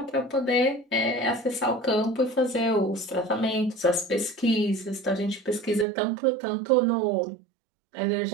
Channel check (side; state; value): left; drops out; at 5.9 s